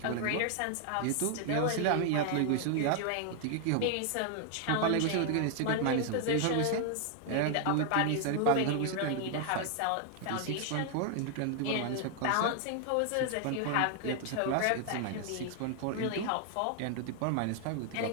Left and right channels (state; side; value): different; both; correlation 0.00